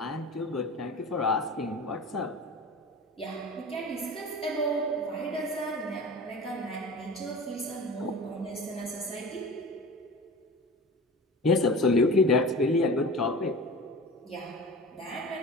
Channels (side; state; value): both; normal; correlation 0.35